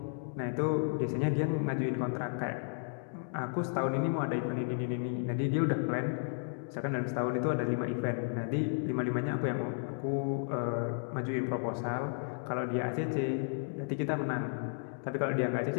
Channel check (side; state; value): right; silent; digital silence